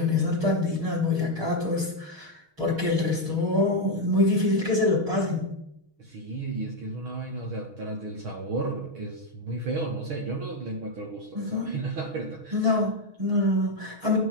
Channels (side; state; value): left; late; 6.4 ms